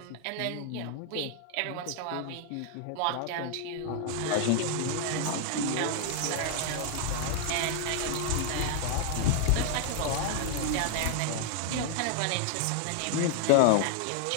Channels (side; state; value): both; different; correlation 0.00